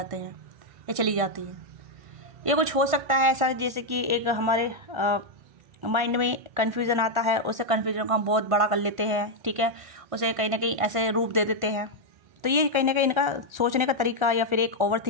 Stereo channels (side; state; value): left; late; 1.5 ms